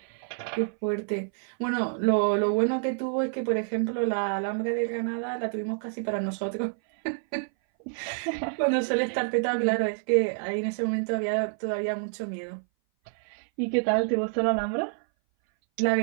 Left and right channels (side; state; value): left; silent; 58 dB below the other